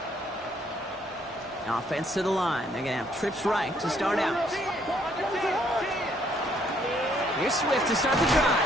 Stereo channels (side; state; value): both; normal; correlation 0.67